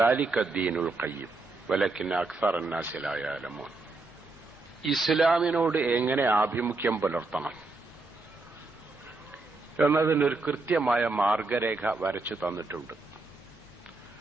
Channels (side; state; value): left; quieter; 3.4 dB